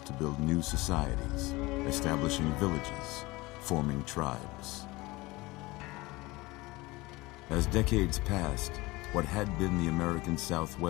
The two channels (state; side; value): quieter; right; 21.7 dB